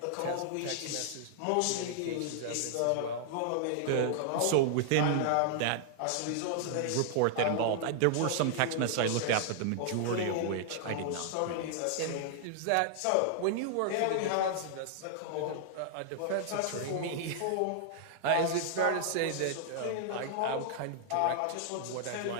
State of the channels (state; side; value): different; both; correlation -0.01